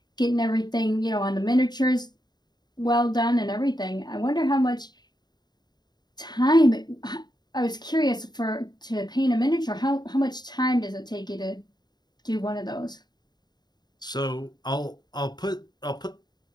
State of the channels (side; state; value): right; late; 0.20 ms